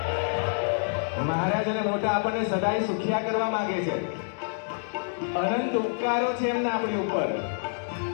મહારાજ અને મોટા આપણને સદાય સુખિયા કરવા માંગે છે. અનંત ઉપકારો છે એમના આપણી ઉપર.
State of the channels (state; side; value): silent; right; digital silence